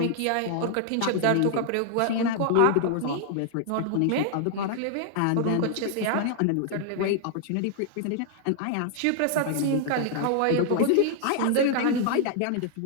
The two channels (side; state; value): both; different; correlation 0.00